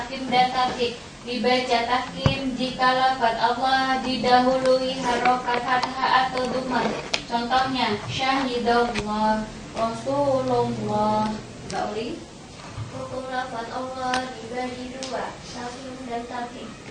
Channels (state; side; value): identical; both; correlation 1.00